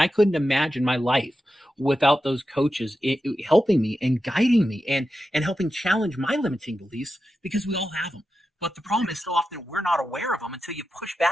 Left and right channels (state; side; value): normal; both; correlation 0.91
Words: I couldn't imagine my life without those coaches helping me and guiding me and helping challenge my limiting beliefs, because we all have them. But the problem is, so often we're not aware of them until you push